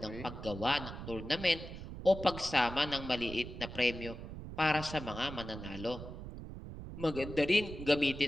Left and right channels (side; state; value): right; noise; rumble, 10 dB below the sound